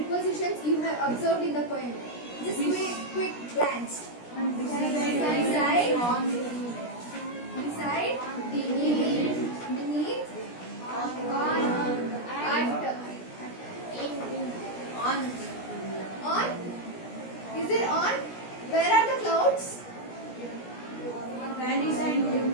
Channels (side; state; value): right; late; 17 ms